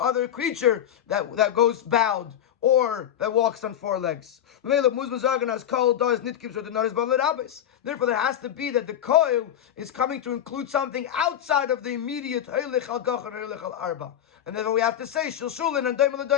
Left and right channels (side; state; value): right; quieter; 10.3 dB